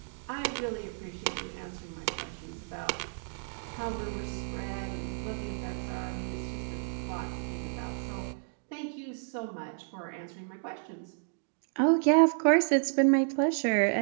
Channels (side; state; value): left; silent; digital silence